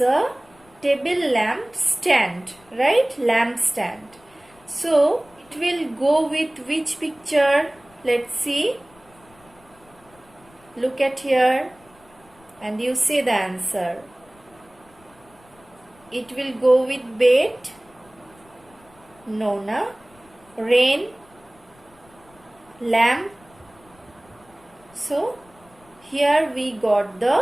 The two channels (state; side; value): noise; left; rumble, 29 dB below the sound